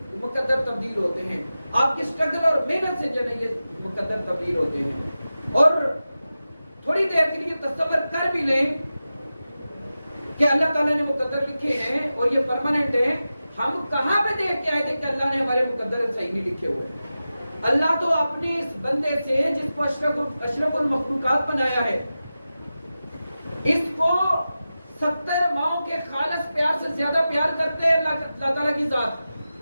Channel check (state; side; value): inverted; both; correlation -0.93